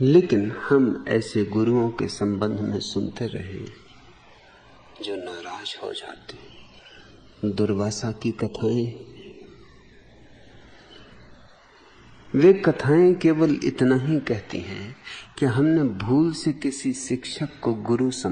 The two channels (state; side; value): identical; both; correlation 1.00